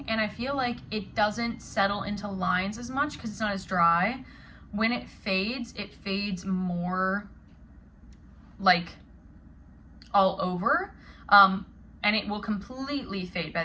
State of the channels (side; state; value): both; identical; correlation 1.00